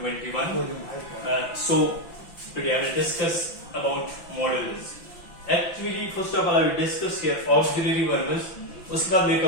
So, today I will discuss about modals. Actually, first of all, I will discuss here auxiliary verbs. उसके बाद मैं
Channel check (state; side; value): late; right; 5.8 ms